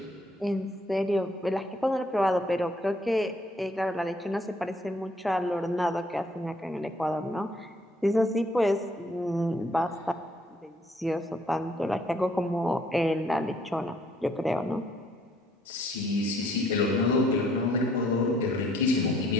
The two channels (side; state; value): both; normal; correlation 0.65